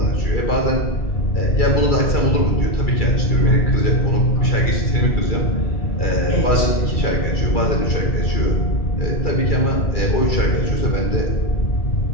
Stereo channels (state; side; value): late; right; 2.3 ms